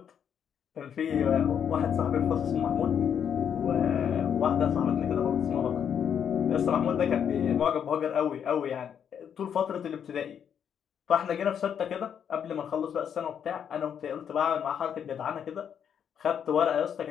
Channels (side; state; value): right; quieter; 8.3 dB